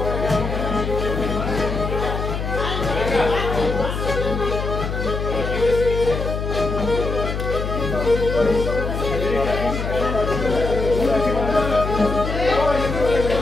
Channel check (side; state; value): left; noise; hum, 3 dB below the sound